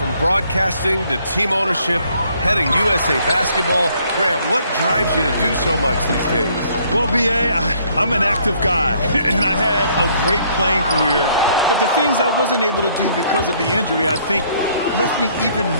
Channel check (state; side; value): inverted; both; correlation -0.65